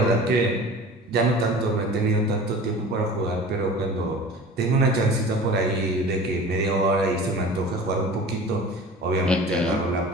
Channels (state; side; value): normal; both; correlation 0.40